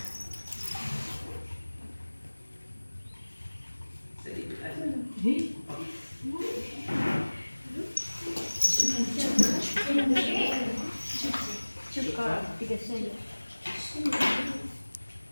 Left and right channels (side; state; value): both; inverted; correlation -1.00